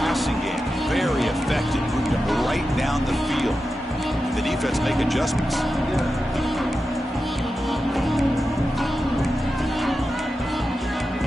game, very effective. Moved them right down the field. The defense make adjustments.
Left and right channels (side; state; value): both; normal; correlation 0.91